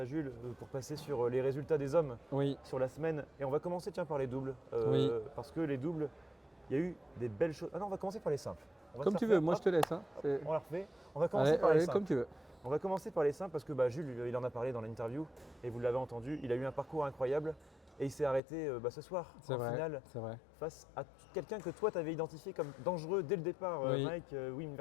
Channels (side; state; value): right; drops out; at 18.4 s